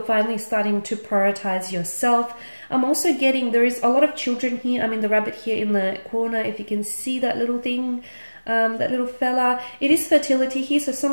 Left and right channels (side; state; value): both; inverted; correlation -1.00